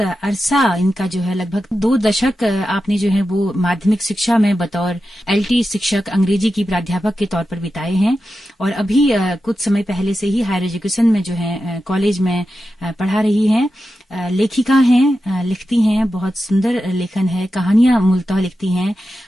अरसा इनका जो है लगभग 2 दशक आपने जो है वो माध्यमिक शिक्षा में बतौर एलटी शिक्षक अंग्रेजी की प्राध्यापक के तौर पर बिताए हैं और अभी कुछ समय पहले से ही हायर एजुकेशन में जो है कॉलेज में पढ़ा रही हैं। लेखिका हैं, लिखती हैं, बहुत सुंदर लेखन है, कहानियां मूलतः लिखती हैं।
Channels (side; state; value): both; normal; correlation 0.91